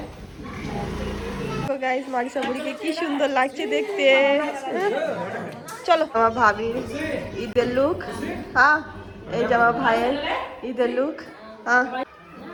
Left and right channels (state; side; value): identical; both; correlation 1.00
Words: তো গাইস, মারিসা বুড়িকে কি সুন্দর লাগছে দেখতে। চলো, আমার ভাবির ঈদের লুক, হ্যাঁ। এই যে আমার ভাইয়ের ঈদের লুক, হ্যাঁ।